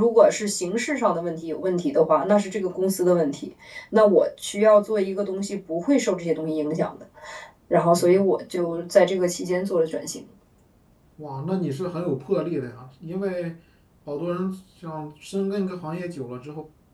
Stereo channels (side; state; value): both; identical; correlation 1.00